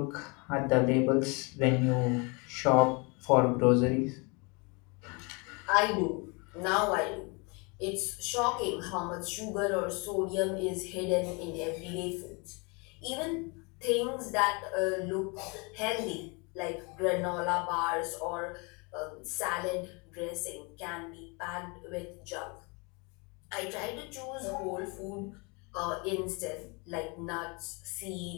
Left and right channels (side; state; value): right; quieter; 30.3 dB